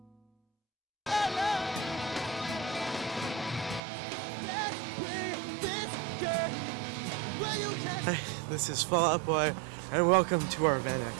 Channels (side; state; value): left; drops out; at 3.8 s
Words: Hey, this is Fall Out Boy, and welcome to our van